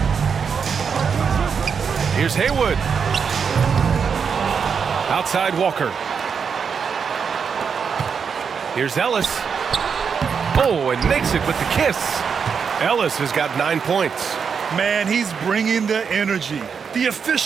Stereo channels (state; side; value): quieter; left; 6.3 dB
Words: Here's Haywood. Outside Walker. Here's Ellis. Oh, and makes it with the kiss. Ellis has got 9 points. Man, he's bringing the energy, the